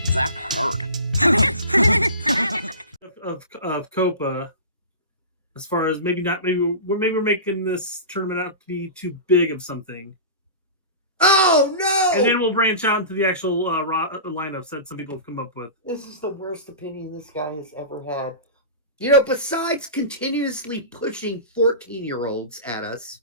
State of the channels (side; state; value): both; inverted; correlation -0.32